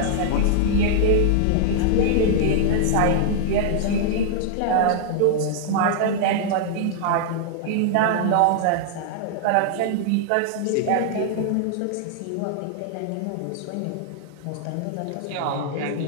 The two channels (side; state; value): both; different; correlation -0.01